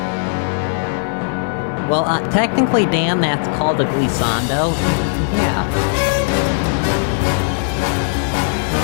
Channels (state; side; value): silent; right; digital silence